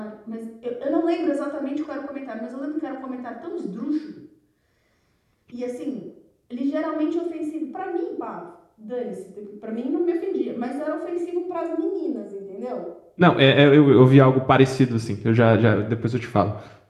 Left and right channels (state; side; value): identical; both; correlation 1.00